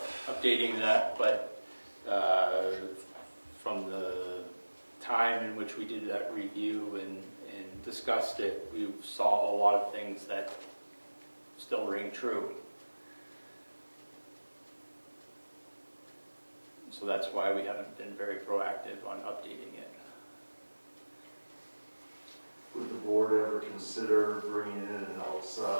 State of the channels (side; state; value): both; inverted; correlation -1.00